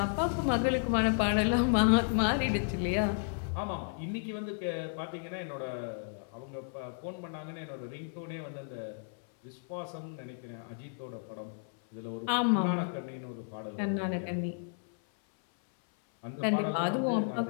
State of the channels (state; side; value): silent; right; 56 dB below the other